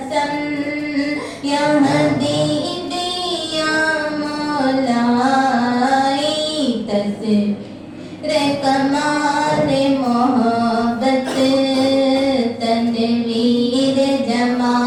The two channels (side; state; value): both; identical; correlation 1.00